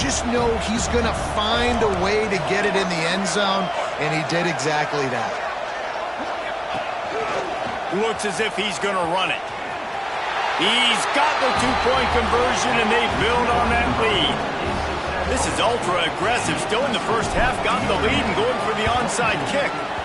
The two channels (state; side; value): identical; both; correlation 1.00